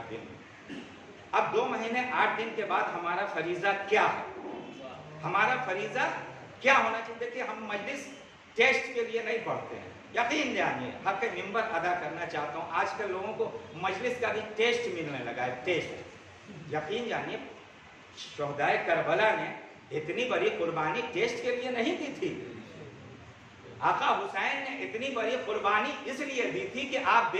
दिन। अब 2 महीने 8 दिन के बाद हमारा फरीज़ा क्या है? हमारा फरीज़ा क्या होना चाहिए? देखिए, हम मजलिस टेस्ट के लिए नहीं पढ़ते हैं। यकीन जानिए, हक मिंबर अदा करना चाहता हूँ, आजकल लोगों को मजलिस का भी टेस्ट मिलने लगा है, टेस्ट। यकीन जानिए, शोहदाए करबला ने इतनी बड़ी कुर्बानी टेस्ट के लिए नहीं दी थी। आका हुसैन ने इतनी बड़ी कुर्बानी इसलिए दी थी कि आप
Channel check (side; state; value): both; identical; correlation 1.00